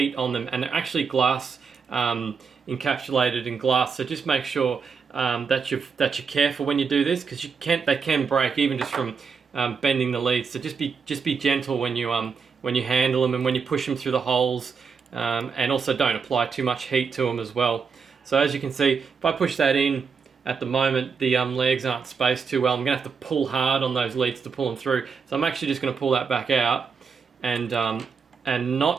on them, and they're actually glass, encapsulated in glass, so just make sure that you're careful when you do this, because they can break even just from bending the leads. So just be gentle when you handle them and when you push them through the holes, and also don't apply too much heat to them as well. So as you can see, if I push that in, at the moment the legs aren't spaced too well. I'm going to have to pull hard on those leads to pull them through. So I'm actually just going to pull that back out and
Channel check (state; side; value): quieter; left; 5.7 dB